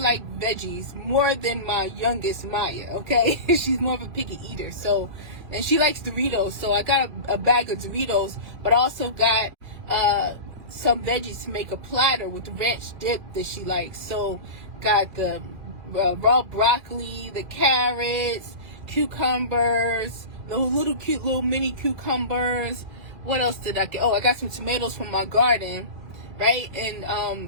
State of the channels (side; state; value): left; late; 2.3 ms